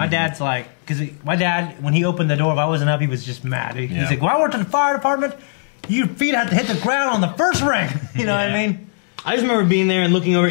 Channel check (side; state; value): right; silent; digital silence